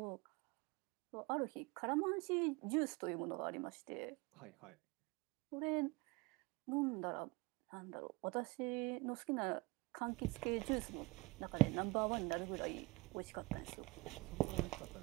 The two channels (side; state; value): left; quieter; 24.0 dB